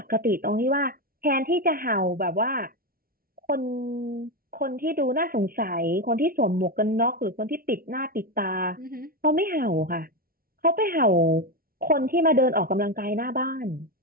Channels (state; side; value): late; left; 0.43 ms